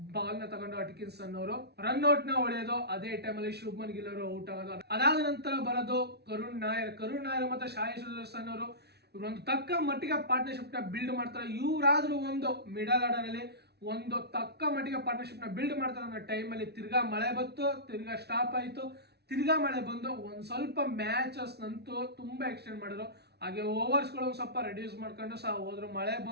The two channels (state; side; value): late; left; 0.48 ms